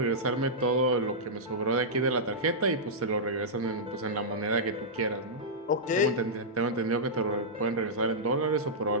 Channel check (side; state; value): both; normal; correlation -0.11